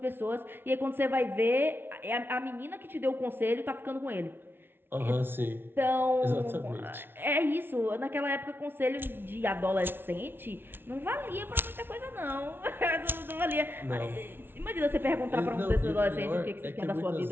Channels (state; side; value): late; left; 0.11 ms